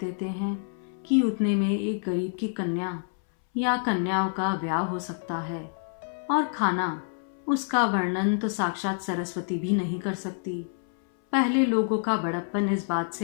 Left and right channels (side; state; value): right; silent; 60 dB below the other